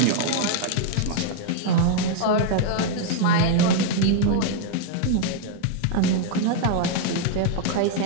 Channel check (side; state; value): both; different; correlation 0.00